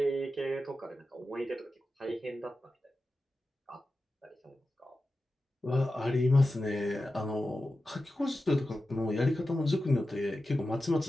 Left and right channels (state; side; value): normal; both; correlation 0.93